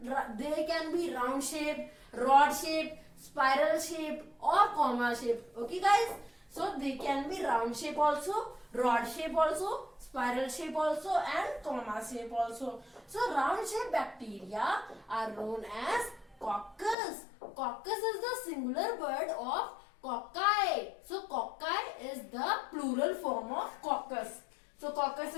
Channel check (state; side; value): drops out; right; at 16.9 s